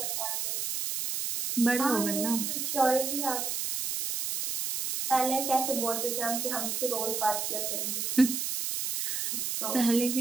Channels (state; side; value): noise; right; hiss, 2 dB below the sound